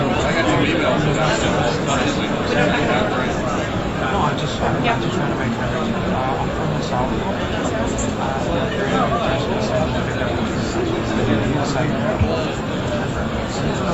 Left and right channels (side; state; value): both; identical; correlation 1.00